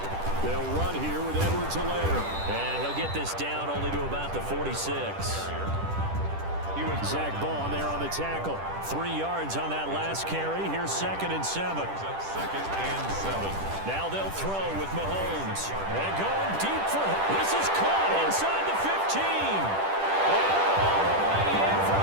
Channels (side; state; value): left; late; 10 ms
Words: They'll run here with Edwards-Helaire. And he'll get this down only to about the 46. Zach Bond there on the tackle. 3 yards on that last carry. Here's 2nd and 7. 2nd and 7. Now they'll throw with Mahomes. And going deep for him. This is caught inside the 15. And all the way in for